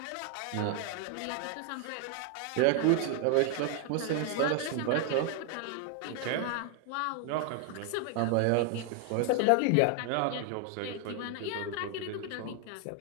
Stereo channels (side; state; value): both; different; correlation 0.00